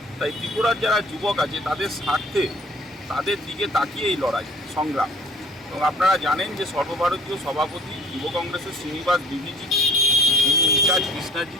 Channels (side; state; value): both; normal; correlation 0.51